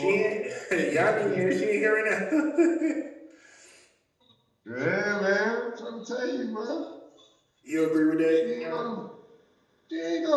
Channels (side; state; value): both; identical; correlation 1.00